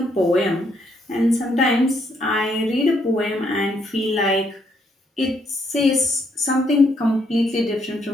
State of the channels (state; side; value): normal; both; correlation 0.73